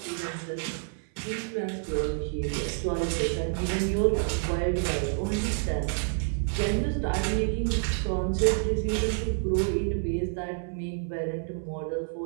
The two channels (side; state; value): left; silent; 59 dB below the other